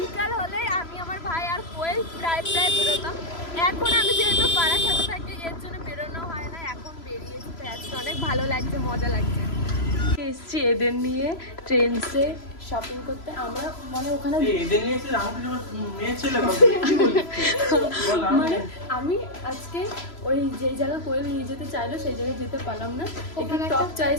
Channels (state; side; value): late; right; 3.0 ms